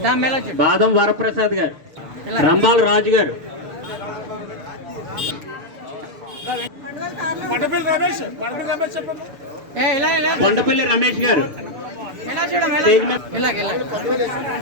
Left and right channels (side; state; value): left; late; 6.8 ms